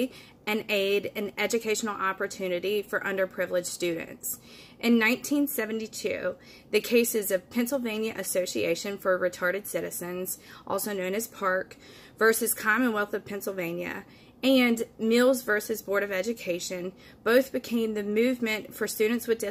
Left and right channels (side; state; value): both; identical; correlation 1.00